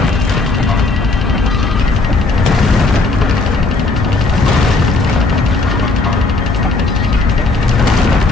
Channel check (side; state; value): right; quieter; 3.5 dB